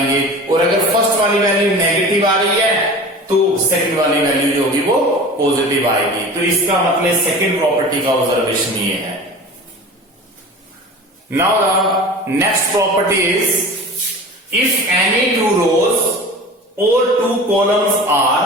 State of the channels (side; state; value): both; normal; correlation 0.37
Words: और अगर फर्स्ट वाली वैल्यू नेगेटिव आ रही है तो सेकंड वाली वैल्यू जो होगी वो पॉजिटिव आएगी। तो इसका मतलब सेकंड प्रॉपर्टी का ऑब्जर्वेशन ये है। Now the next property is, if any two rows or two columns are